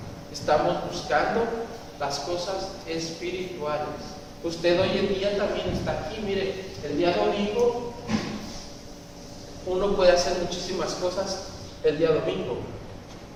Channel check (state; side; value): identical; both; correlation 1.00